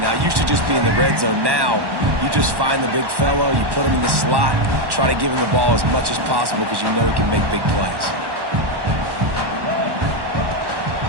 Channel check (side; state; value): left; late; 1.1 ms